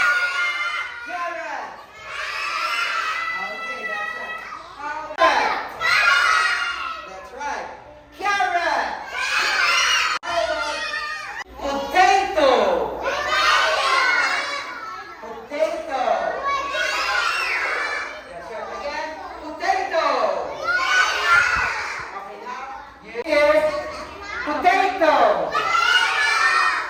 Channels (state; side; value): identical; both; correlation 1.00